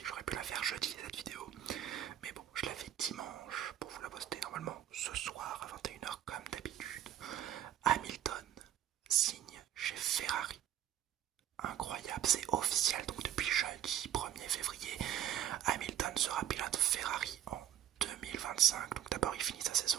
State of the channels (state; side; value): quieter; left; 11.2 dB